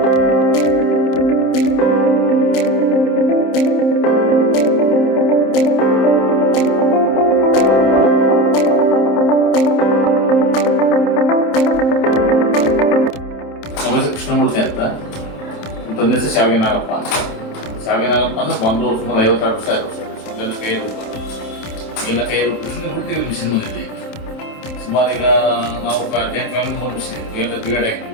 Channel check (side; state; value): right; late; 27 ms